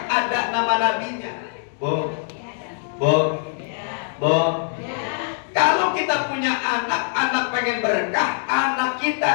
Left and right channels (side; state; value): right; silent; 64 dB below the other